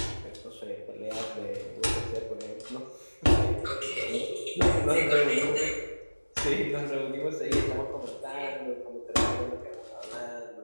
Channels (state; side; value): inverted; both; correlation -1.00